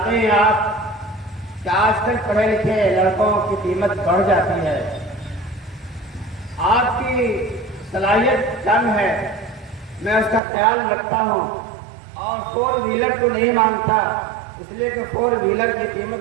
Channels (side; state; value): left; drops out; at 10.4 s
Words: ہیں آپ کہ آج کل پڑھے لکھے لڑکوں کی قیمت بڑھ جاتی ہے، آپ کی صلاحیت کم ہے، میں اس کا خیال رکھتا ہوں اور 4 ویلر کو نہیں مانگتا اس لیے کہ 4 ویلر کی